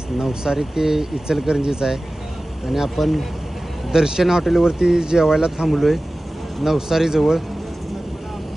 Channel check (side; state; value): both; normal; correlation 0.97